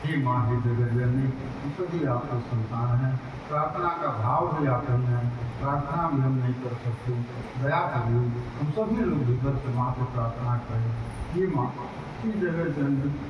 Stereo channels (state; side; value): identical; both; correlation 1.00